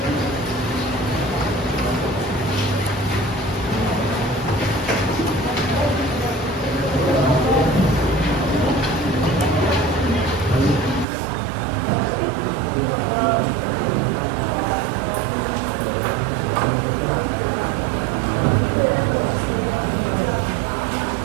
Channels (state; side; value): drops out; left; at 11.1 s